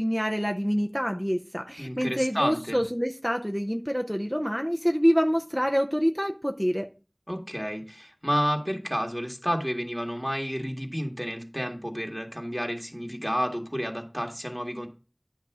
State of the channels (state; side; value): identical; both; correlation 1.00